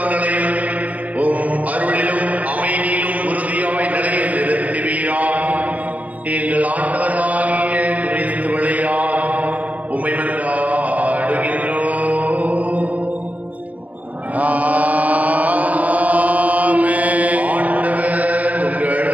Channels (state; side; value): late; left; 0.072 ms